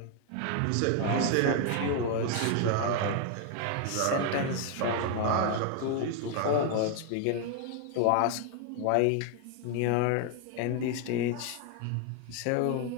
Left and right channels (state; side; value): different; both; correlation 0.00